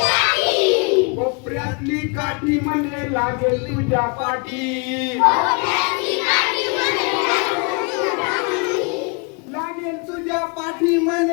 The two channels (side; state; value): right; quieter; 33.6 dB